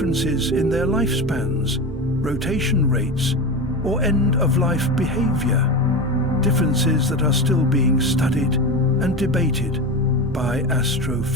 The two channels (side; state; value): both; normal; correlation 0.23